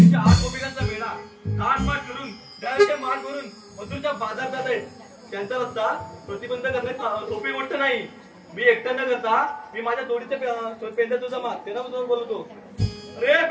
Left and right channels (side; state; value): both; identical; correlation 1.00